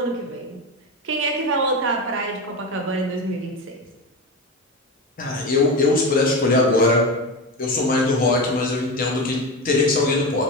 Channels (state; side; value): normal; both; correlation 0.21